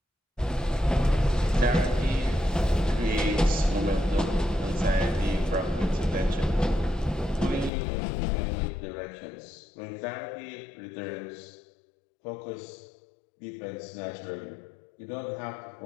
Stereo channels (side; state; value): right; drops out; at 7.7 s